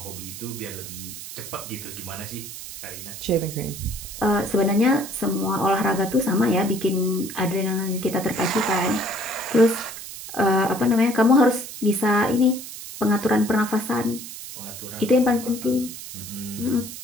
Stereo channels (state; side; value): noise; right; hiss, 11 dB below the sound